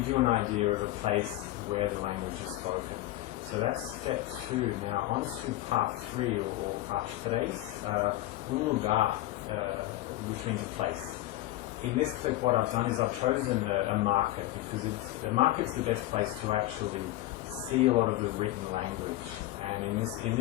you an idea of a place where the language is spoken. So that's step 2. Now on to part 3 or parte 3, lugar, which means a place. In this clip what I've done is I've chosen a market, because the market's the best place to actually see a lot of the written language. And in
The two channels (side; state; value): right; quieter; 16.2 dB